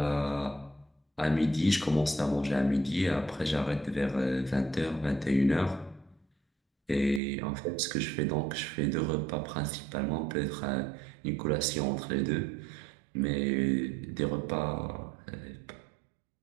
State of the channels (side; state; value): left; drops out; at 7.2 s